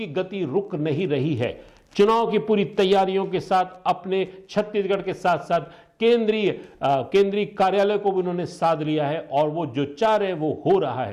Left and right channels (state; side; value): identical; both; correlation 1.00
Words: गति रुक नहीं रही है। चुनाव की पूरी तैयारियों के साथ अपने छत्तीसगढ़ के साथ साथ केंद्रीय कार्यालय को भी उन्होंने साध लिया है और वो जो चाह रहे वो हो रहा